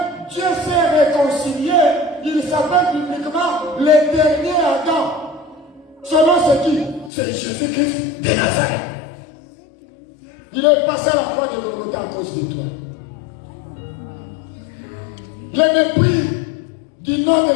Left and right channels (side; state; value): right; drops out; at 7.1 s